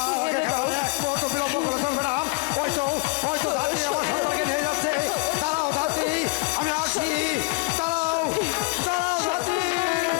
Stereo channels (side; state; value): right; quieter; 30.5 dB